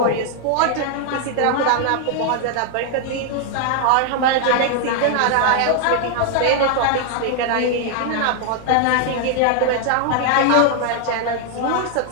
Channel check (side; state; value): both; different; correlation 0.00